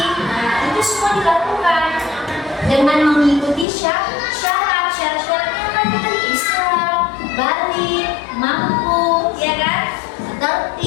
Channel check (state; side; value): drops out; right; at 3.7 s